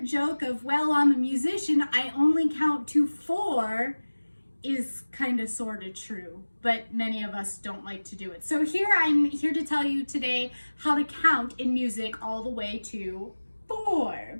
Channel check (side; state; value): both; inverted; correlation -1.00